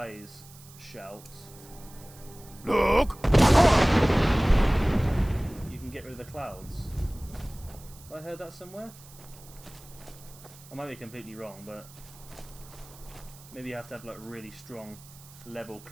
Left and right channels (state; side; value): noise; right; hiss, 21 dB below the sound